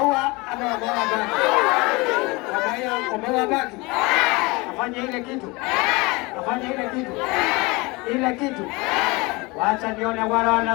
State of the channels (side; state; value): right; quieter; 24.9 dB